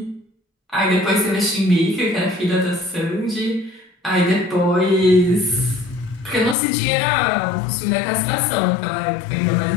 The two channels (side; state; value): right; drops out; at 6.6 s